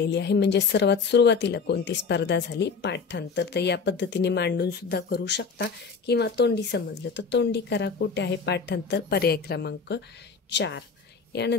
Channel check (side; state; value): right; quieter; 5.2 dB